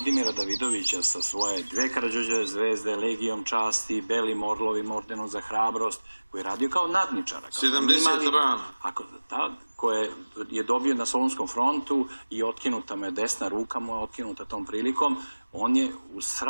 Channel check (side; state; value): both; inverted; correlation -1.00